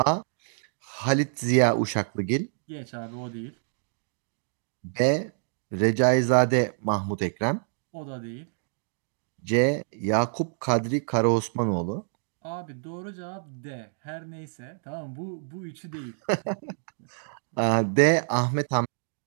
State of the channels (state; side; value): silent; left; digital silence